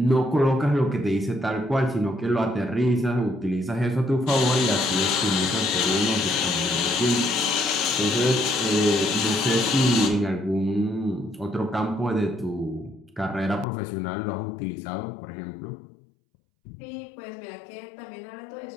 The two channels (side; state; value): right; drops out; at 13.7 s